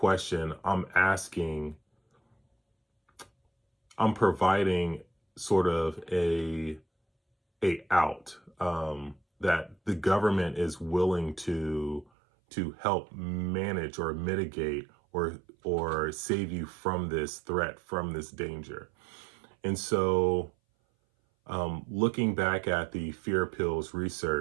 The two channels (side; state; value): left; drops out; at 12.1 s